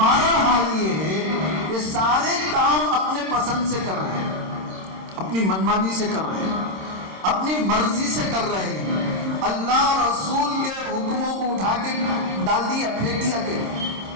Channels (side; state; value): left; late; 26 ms